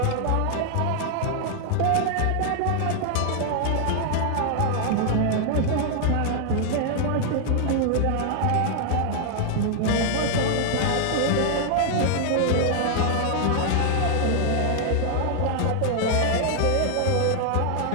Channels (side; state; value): both; different; correlation 0.00